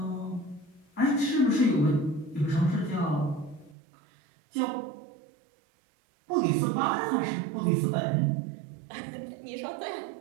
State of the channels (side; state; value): left; drops out; at 3.8 s